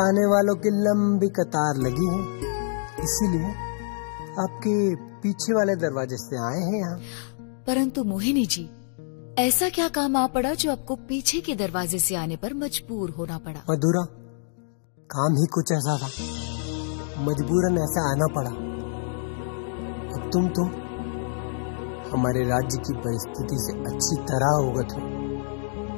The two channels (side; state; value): right; silent; digital silence